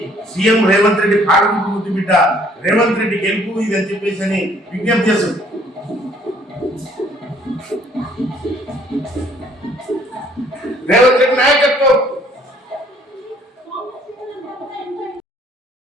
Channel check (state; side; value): normal; both; correlation 0.60